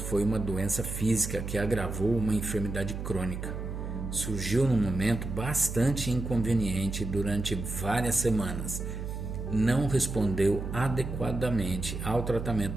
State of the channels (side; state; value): right; noise; hum, 6 dB below the sound